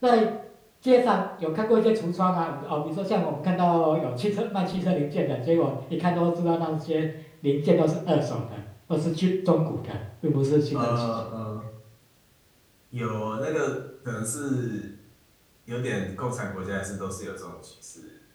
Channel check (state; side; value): identical; both; correlation 1.00